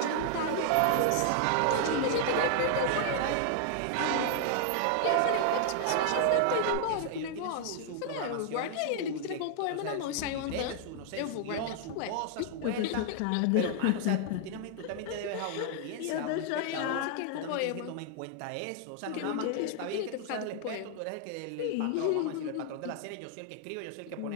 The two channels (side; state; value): both; different; correlation 0.00